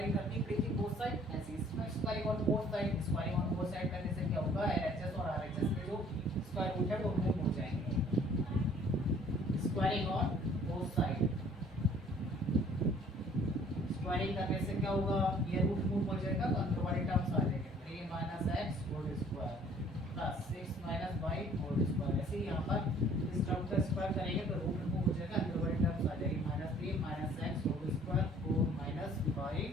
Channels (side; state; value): both; normal; correlation 0.56